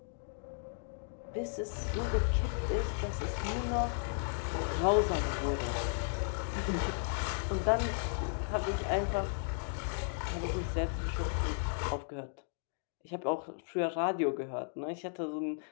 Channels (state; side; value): silent; right; digital silence